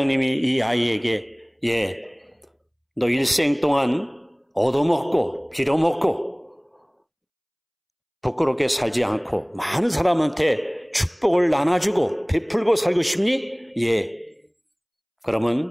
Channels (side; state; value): both; identical; correlation 1.00